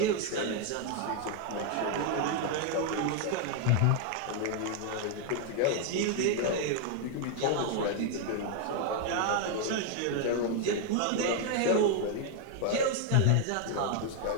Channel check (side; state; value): both; different; correlation 0.00